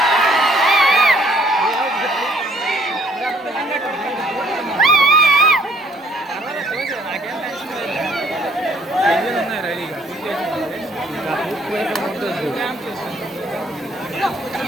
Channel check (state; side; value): normal; both; correlation 0.62